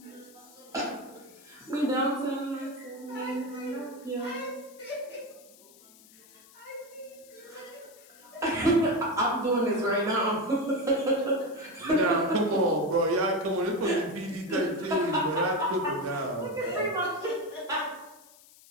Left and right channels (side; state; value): left; noise; hiss, 24 dB below the sound